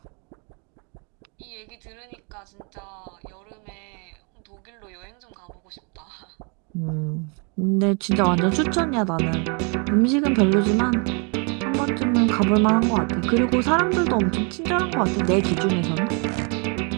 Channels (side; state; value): left; quieter; 35.3 dB